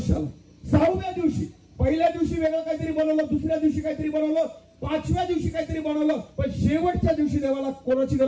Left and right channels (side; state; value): both; identical; correlation 1.00